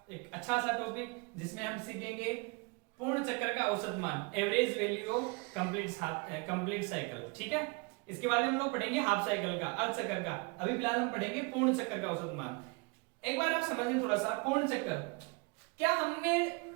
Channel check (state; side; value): quieter; left; 29.8 dB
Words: एक अच्छा सा टॉपिक, जिसमें हम सीखेंगे पूर्ण चक्र का औसत मान, average value of complete cycle. ठीक है, इसके बाद हम लोग पढ़ेंगे हाफ साइकिल का, अर्ध चक्र का। अभी फिलहाल हम पढ़ेंगे पूर्ण चक्र का औसत मान। एक बार आप समझें थोड़ा सा पूर्ण चक्र क्या। हमने